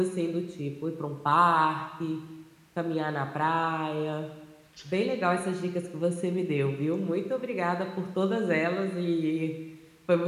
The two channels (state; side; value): identical; both; correlation 1.00